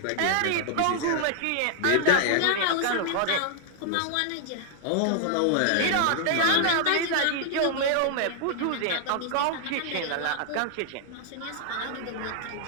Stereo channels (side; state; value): both; different; correlation 0.00